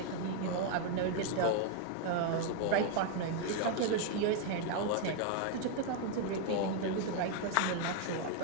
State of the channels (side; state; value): both; different; correlation 0.00